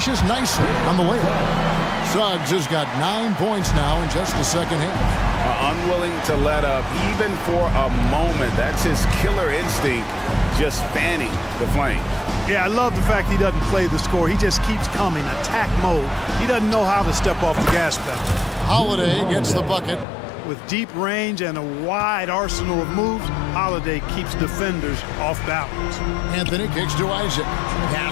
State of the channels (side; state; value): right; drops out; at 20.1 s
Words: nicely on the layup. Suggs has got 9 points now in just the second half. Unwilling to let up even for a moment. That's his killer instinct, just fanning the flame. Yeah, I love the fact he doesn't play the score. He just keeps coming, attack mode. He doesn't know how to step off the gas pedal. Holiday gets the bucket. With deep range and a wide arsenal of moves, Holiday keeps defenders off balance. Anthony kicks to Isaac.